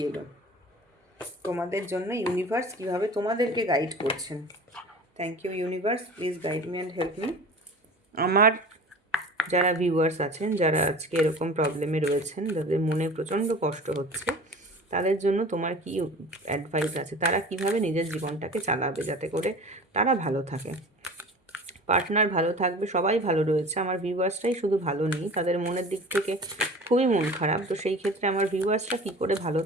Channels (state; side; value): normal; both; correlation 0.40